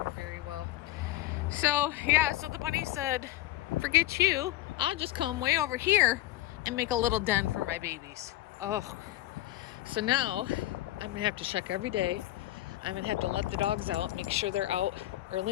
very well. So, yeah, so the bunny said, forget you. I'll just come way over here and make a little den for my babies. Oh, so now I'm going to have to check every day. I'm going to have to let the dogs out, make sure they're out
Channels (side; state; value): right; quieter; 16.0 dB